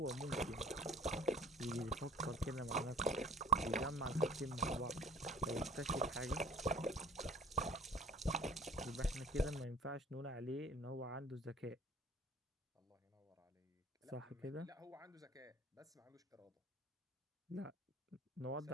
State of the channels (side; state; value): both; normal; correlation 0.49